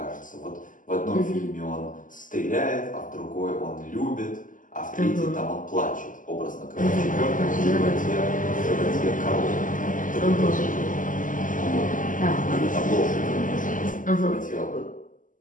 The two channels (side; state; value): right; late; 0.38 ms